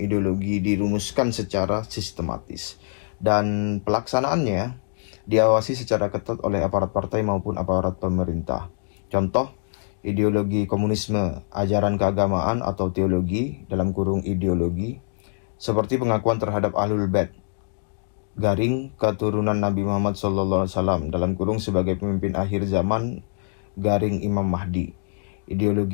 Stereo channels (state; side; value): silent; right; digital silence